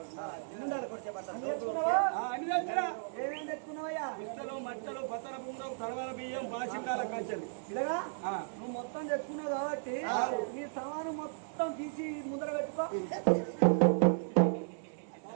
అన్ని తెచ్చినా ఏమేమి తెచ్చుకున్నావయ్యా ఇస్తలు మట్టలు పతర బుండం తరవల బియ్యం బాసింగాల కంచెలు ఇలాగా నువ్వు మొత్తం తెచ్చుకున్నావు కాబట్టి నీ సామాను మొత్తం తీసి ముందర పెట్టుకో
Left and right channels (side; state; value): left; silent; 55 dB below the other